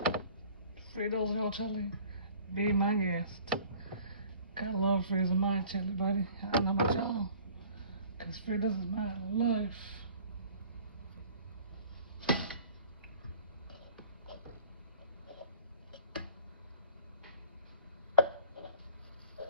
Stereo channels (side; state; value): both; inverted; correlation -0.50